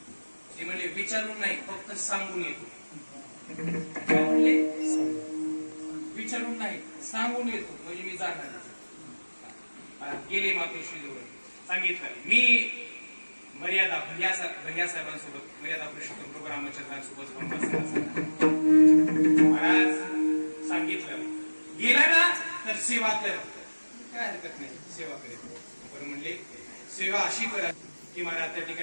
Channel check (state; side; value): inverted; both; correlation -1.00